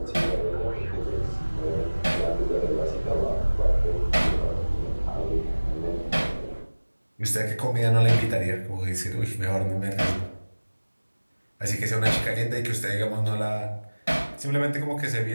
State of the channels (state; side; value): inverted; both; correlation -1.00